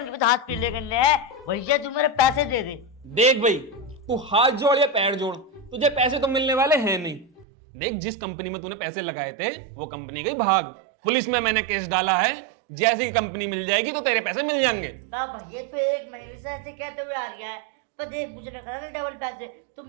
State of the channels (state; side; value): drops out; left; at 7.5 s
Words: हाथ पीले करने हैं। भैया तू मेरे पैसे दे दे। देख भाई, तू हाथ जोड़ या पैर जोड़, तुझे पैसे तो मिलने वाले हैं नहीं। देख, जिस कंपनी में तूने पैसे लगाए थे वो कंपनी गई भाग, पुलिस में मैंने केस डाला है। जैसी कंपनी मिल जाएगी तो तेरे पैसे मिल जाएंगे। भैया तो 1 महीने से ऐसे कहते हुए आ रहा है, पर देख मुझे ना करना डबल पैसे, तू